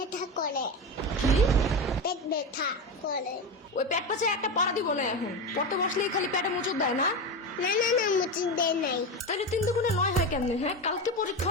করে। কি? পেট ব্যথা করে। ওই পেট পাশে একটা পাড়া দিব না এখন। পড়তে বসলেই খালি পেটে মুচুর দেয় না? না না না, মুচি দেয় নাই। তাহলে 3 দুগুণে 9 হয় কেমনে? হ্যাঁ, কালকে পরীক্ষা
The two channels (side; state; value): both; normal; correlation 0.19